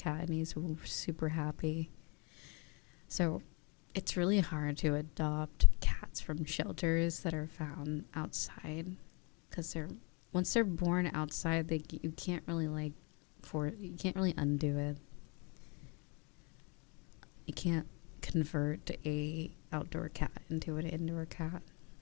and he's super happy. So it's really hard to adopt cats from shelters that are found outside, because once they're born outside, you can't really undo it. You can't convert a outdoor cat into an indoor cat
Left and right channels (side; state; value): right; quieter; 32.3 dB